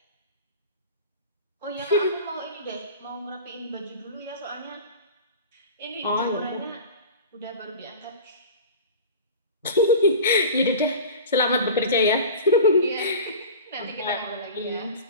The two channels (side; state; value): both; inverted; correlation -0.36